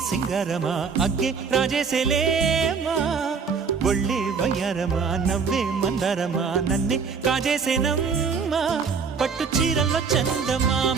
సింగారమా అగ్గే రాజేసేలేమా ఒళ్ళే వయ్యారమా నవ్వే మందారమా నన్నే కాజేసేనమ్మా పట్టు చీరల్లో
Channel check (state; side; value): quieter; left; 5.6 dB